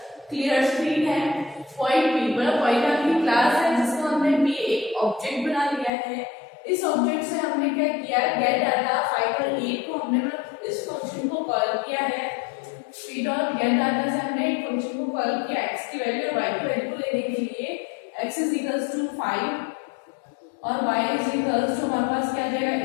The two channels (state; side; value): drops out; right; at 5.9 s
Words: क्लियर स्क्रीन है, पॉइंट p मतलब पॉइंट आपकी क्लास है जिसको हमने p एक ऑब्जेक्ट बना लिया है। इस ऑब्जेक्ट से हमने क्या किया, गेट डाटा 5 और 8 को हमने मतलब इस फंक्शन को कॉल किया है। p डॉट गेट डाटा से हमने एक फंक्शन को कॉल किया x की वैल्यू और y की वैल्यू को लेने के लिए। x इज इक्वल्स टू 5 और y इज इक्वल्स टू हमारे पास क्या आ जाएगा